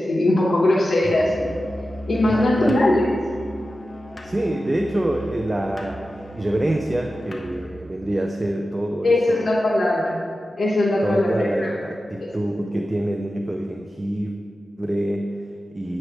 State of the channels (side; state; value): both; normal; correlation 0.93